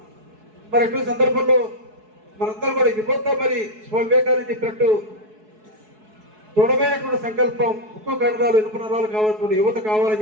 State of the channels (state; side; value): late; left; 4.7 ms